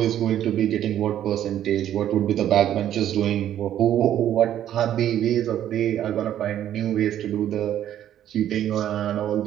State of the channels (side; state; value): left; quieter; 11.2 dB